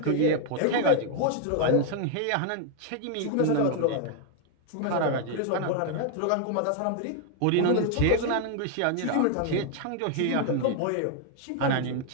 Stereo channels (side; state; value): both; different; correlation 0.00